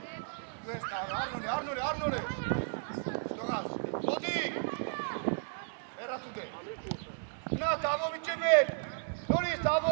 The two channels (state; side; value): silent; left; digital silence